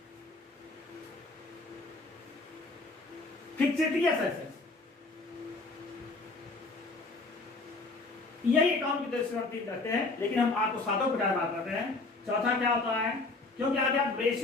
फिक्सेटियस एसेट्स। यही अकाउंट की दृष्टि से करते हैं, लेकिन हम आपको 7 प्रकार बात करते हैं। चौथा क्या होता है, क्योंकि आगे आप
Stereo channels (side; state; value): right; quieter; 3.4 dB